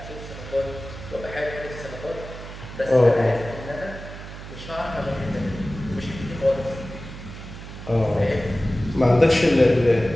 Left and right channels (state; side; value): noise; right; hum, 12 dB below the sound